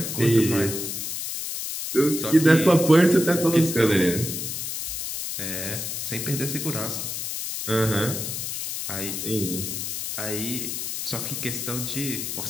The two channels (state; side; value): noise; left; hiss, 4 dB below the sound